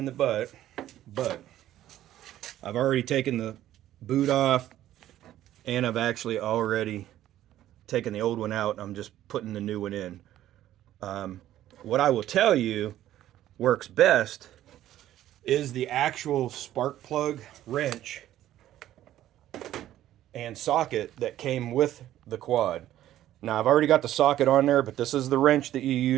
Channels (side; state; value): left; quieter; 12.9 dB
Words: the butt, but I've already taken the boot off, and I've actually already taken the old one out. I'm just putting the new one in. What I will tell you works best is the actual spark plug wrench and socket that came with the quad. Now, I've already got the socket on there, but this is the wrench that you